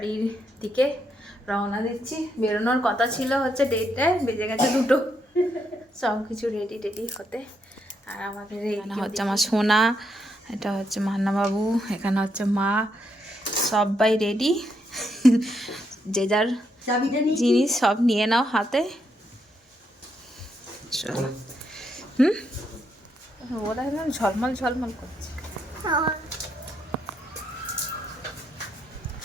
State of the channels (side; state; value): both; normal; correlation 0.78